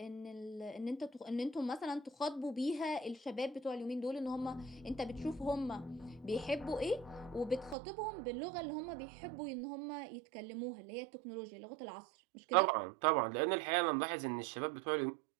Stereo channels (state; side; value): drops out; left; at 7.8 s